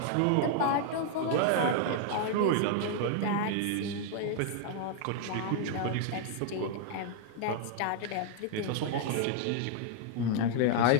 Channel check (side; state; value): both; different; correlation 0.00